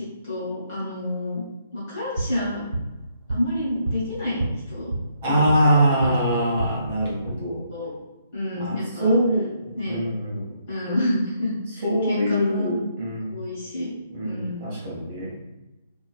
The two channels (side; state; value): both; inverted; correlation -0.73